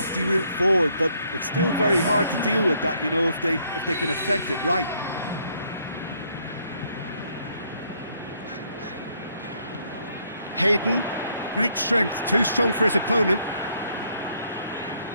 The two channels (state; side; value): inverted; both; correlation -0.69